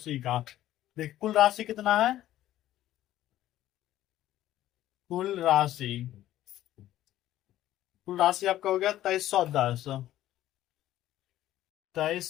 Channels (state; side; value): quieter; right; 13.6 dB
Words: का देख, कुल राशि कितना है? कुल राशि आपका हो गया 2310।